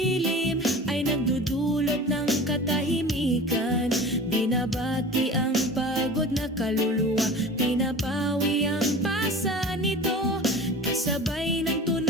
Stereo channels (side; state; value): both; normal; correlation 0.37